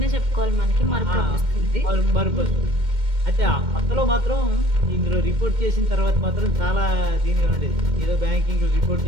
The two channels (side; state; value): left; late; 2.1 ms